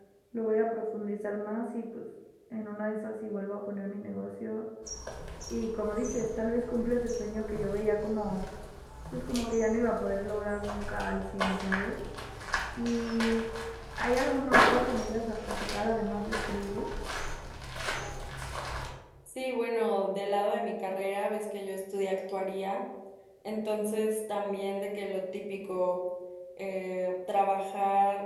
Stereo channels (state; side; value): identical; both; correlation 1.00